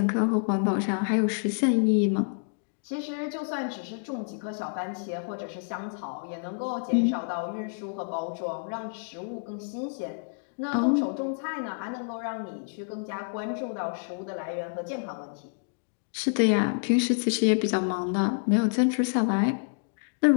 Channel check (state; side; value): silent; right; digital silence